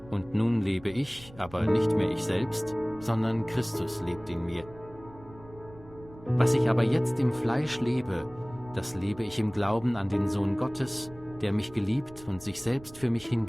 Und nun lebe ich, aber nicht mehr ich selbst, sondern Christus lebt in mir. Was ich aber jetzt im Fleisch lebe, das lebe ich im Glauben an den Sohn Gottes, der mich geliebt und sich selbst für mich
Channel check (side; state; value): right; noise; rumble, 20 dB below the sound